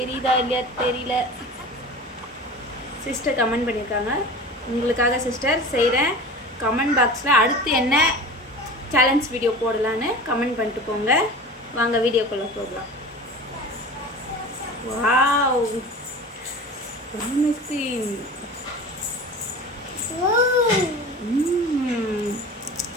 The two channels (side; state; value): both; normal; correlation 0.35